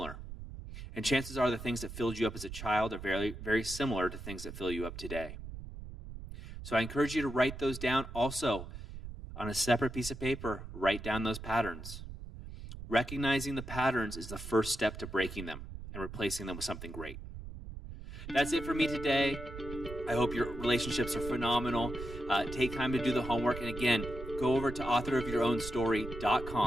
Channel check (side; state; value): right; noise; rumble, 11 dB below the sound